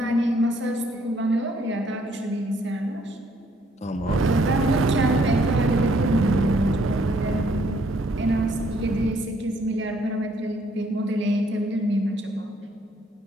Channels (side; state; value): both; normal; correlation 0.66